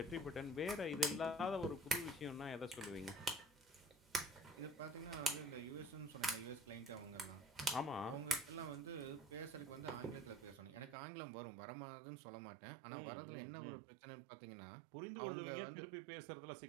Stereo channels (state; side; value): drops out; left; at 11.0 s